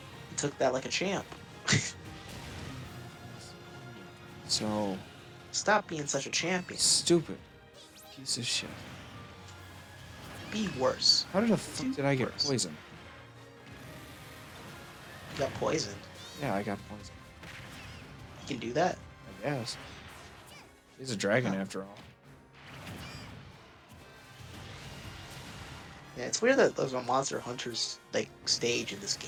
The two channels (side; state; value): both; identical; correlation 1.00